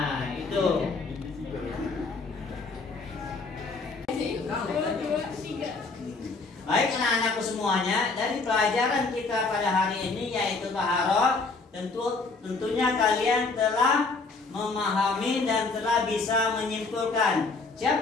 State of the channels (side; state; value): right; quieter; 3.9 dB